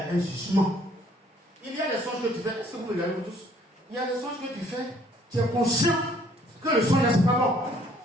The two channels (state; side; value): normal; both; correlation 0.61